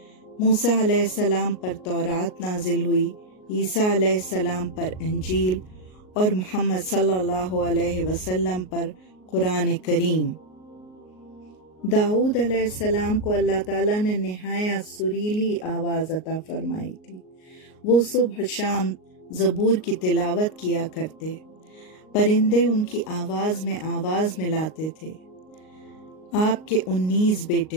موسیٰ علیہ السلام پر تورات نازل ہوئی، عیسیٰ علیہ السلام پر انجیل اور محمد صلی اللہ علیہ وسلم پر قرآن کریم۔ داؤد علیہ السلام کو اللہ تعالیٰ نے نہایت سریلی آواز عطا فرمائی تھی۔ وہ صبح شام زبور کی تلاوت کیا کرتے، پرندے ان کی آواز میں آواز ملاتے تھے۔ آپ کے 19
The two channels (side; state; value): right; late; 38 ms